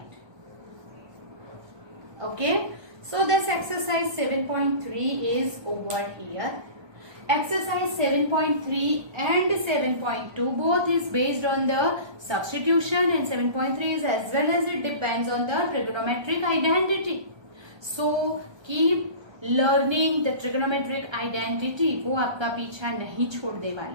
Okay, so this exercise 7.3 is over here. Exercise 7.3 and 7.2 both is based on the substitution, and 7.3 is as well as it depends on the trigonometric identity. So keep learning the trigonometric identity, वो आपका पीछा नहीं छोड़ने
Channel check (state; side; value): late; left; 1.2 ms